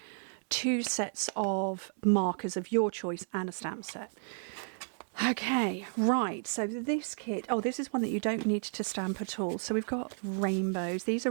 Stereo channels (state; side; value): silent; left; digital silence